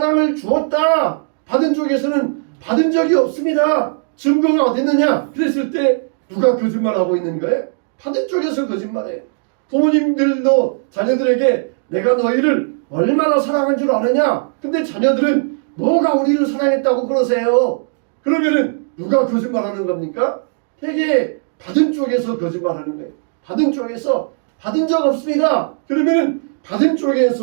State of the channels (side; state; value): left; silent; digital silence